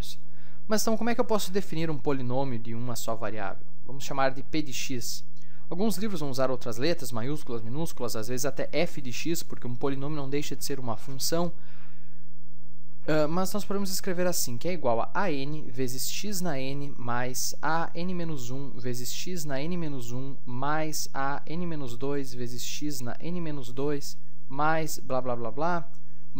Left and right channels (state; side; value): identical; both; correlation 1.00